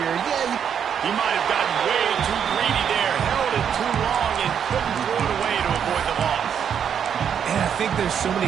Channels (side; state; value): left; quieter; 8.1 dB